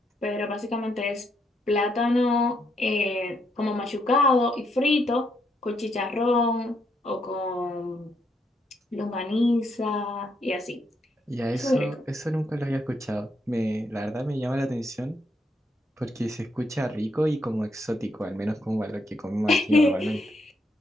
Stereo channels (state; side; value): normal; both; correlation 0.76